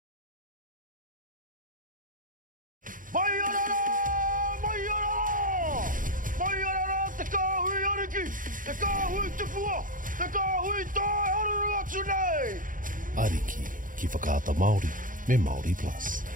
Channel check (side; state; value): left; late; 0.39 ms